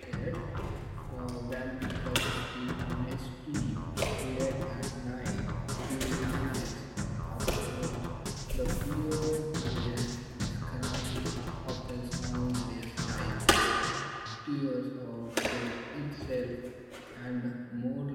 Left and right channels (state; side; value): identical; both; correlation 1.00